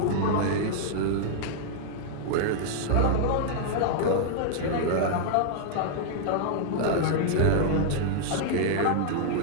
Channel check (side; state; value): both; different; correlation -0.01